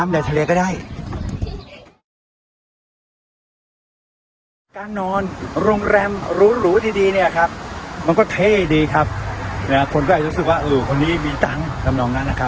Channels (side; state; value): both; identical; correlation 1.00